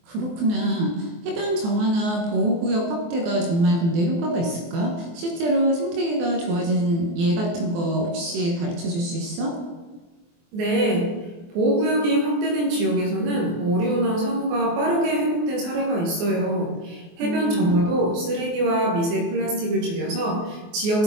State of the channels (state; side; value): late; left; 24 ms